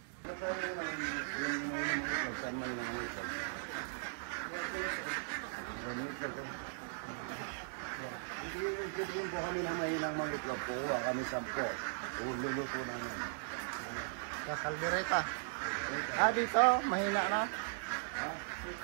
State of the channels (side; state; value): left; silent; digital silence